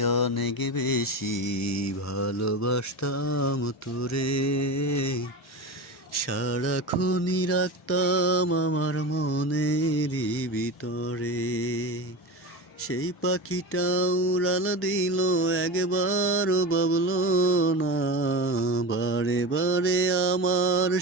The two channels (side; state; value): both; normal; correlation 0.25